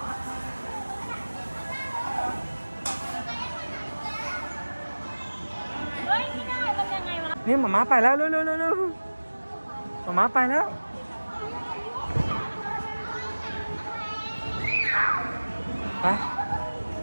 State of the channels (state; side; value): inverted; both; correlation -1.00